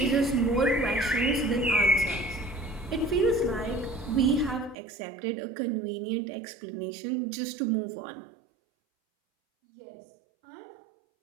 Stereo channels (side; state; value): left; drops out; at 4.8 s